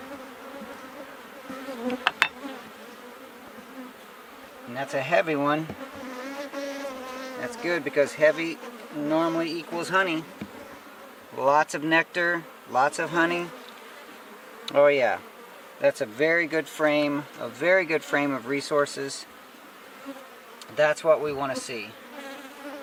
And that's a heavy one. That's good because heavy normally equals honey. Lots of nectar, lots of honey. Oh yeah, that's a very good frame of resources. That's what we want to see.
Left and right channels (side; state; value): both; identical; correlation 1.00